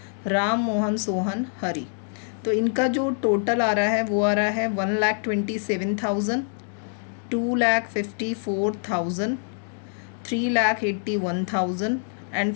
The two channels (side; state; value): right; silent; digital silence